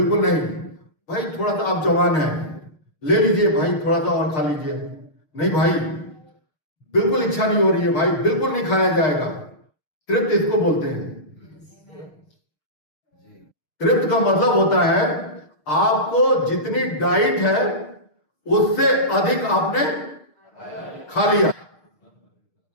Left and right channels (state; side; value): late; right; 6.6 ms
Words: नहीं भाई, थोड़ा सा आप जवान हैं, ले लीजिए भाई, थोड़ा सा और खा लीजिए। नहीं भाई, बिल्कुल इच्छा नहीं हो रही है भाई, बिल्कुल नहीं खाया जाएगा। तृप्त इसको बोलते हैं। तृप्त का मतलब होता है आपको जितनी डाइट है उससे अधिक आपने खा लिया।